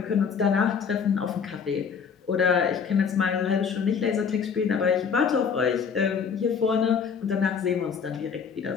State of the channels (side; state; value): right; quieter; 6.4 dB